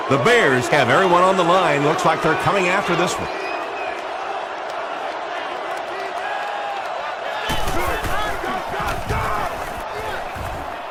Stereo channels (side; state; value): both; identical; correlation 1.00